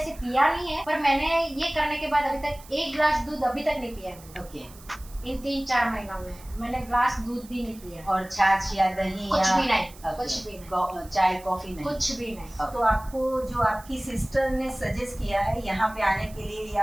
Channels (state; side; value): noise; right; hiss, 21 dB below the sound